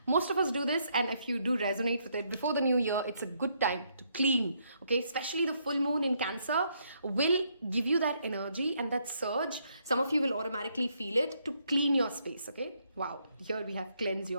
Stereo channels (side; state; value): both; inverted; correlation -0.73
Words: Most of us do this, and if you do resonate with it, before the new year, it's a good time to clean, okay? Especially the full moon in Cancer will give you that energy and that surge. Some of you will automatically feel it to clean your space, okay? Wow, here we have cleanse